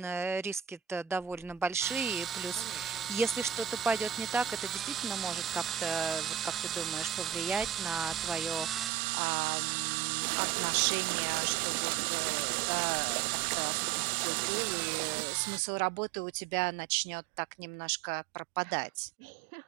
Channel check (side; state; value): left; drops out; at 8.9 s